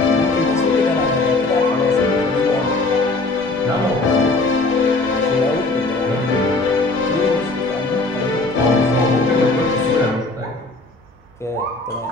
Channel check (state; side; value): quieter; right; 3.2 dB